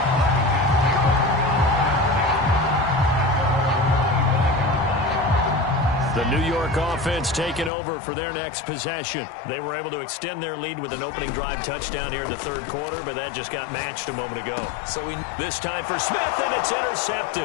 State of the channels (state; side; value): drops out; right; at 7.7 s